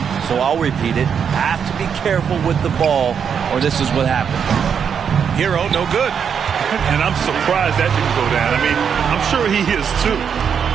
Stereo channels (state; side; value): quieter; left; 7.3 dB